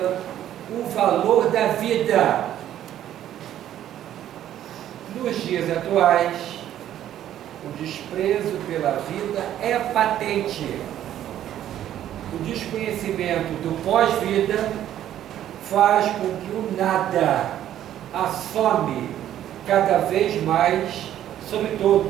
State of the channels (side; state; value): left; quieter; 11.6 dB